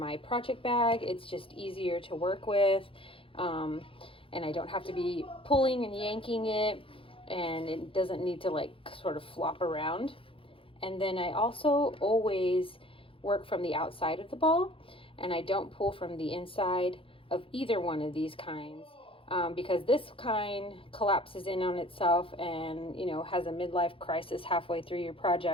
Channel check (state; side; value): late; right; 0.26 ms